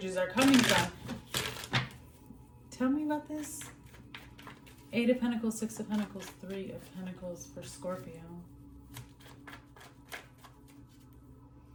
are coming from. Tell me about this. 8 of Pentacles, 6 of Pentacles, 3 of Pentacles for Scorpio.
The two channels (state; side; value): identical; both; correlation 1.00